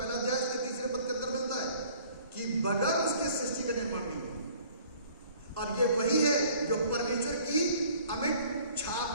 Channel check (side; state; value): both; inverted; correlation -0.54